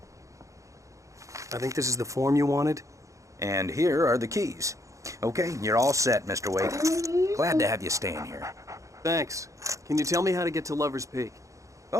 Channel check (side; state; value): left; late; 0.15 ms